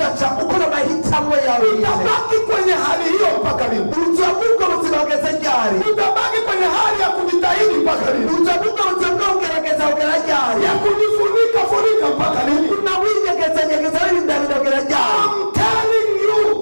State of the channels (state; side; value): inverted; both; correlation -1.00